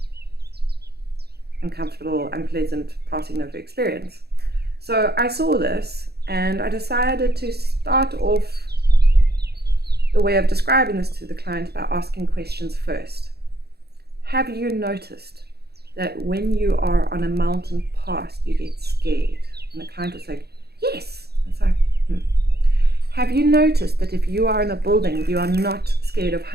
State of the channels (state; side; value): late; left; 0.47 ms